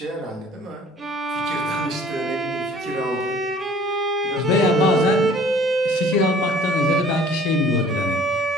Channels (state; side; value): normal; both; correlation 0.52